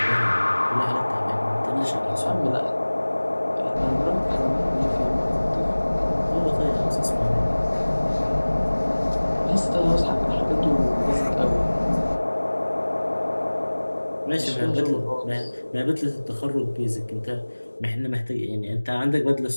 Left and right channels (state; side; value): inverted; both; correlation -1.00